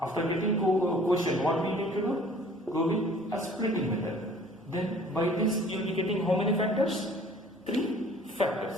after getting quotient, what we need to do? Go with a splitting method. Then by this you will be getting how many factors? 3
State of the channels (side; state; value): both; normal; correlation 0.52